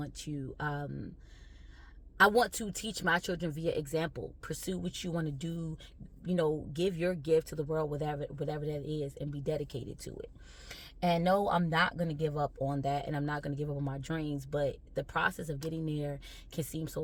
to teach my children via example. Pursue what you want to do, give your gift to the world, whatever that is, and be dedicated to it. And no, I'm not going to give up on that, and I'm not going to give up on my dreams, but the process of getting there can seem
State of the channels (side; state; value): both; identical; correlation 1.00